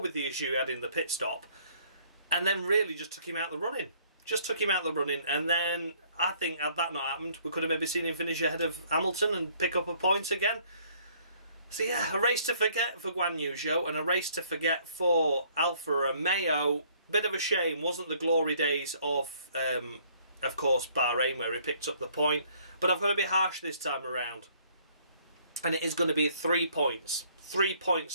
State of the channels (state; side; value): inverted; both; correlation -0.61